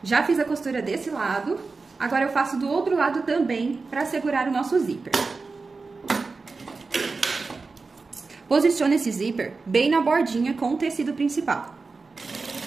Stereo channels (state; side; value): quieter; left; 4.1 dB